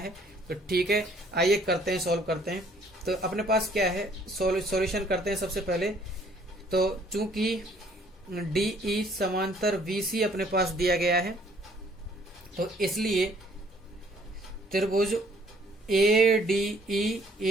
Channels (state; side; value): normal; both; correlation 0.61